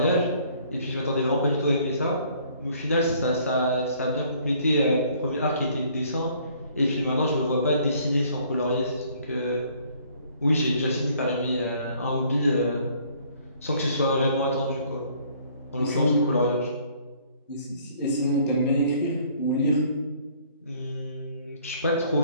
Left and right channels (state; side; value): inverted; both; correlation -0.60